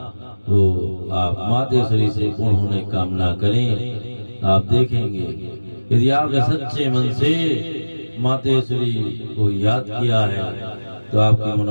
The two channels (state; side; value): inverted; both; correlation -1.00